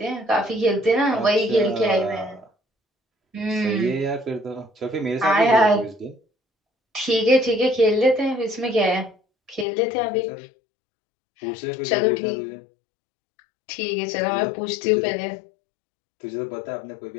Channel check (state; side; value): drops out; right; at 9.7 s